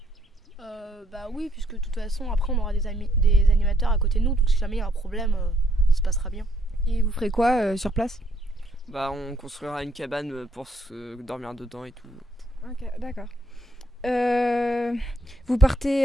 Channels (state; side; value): normal; both; correlation 0.71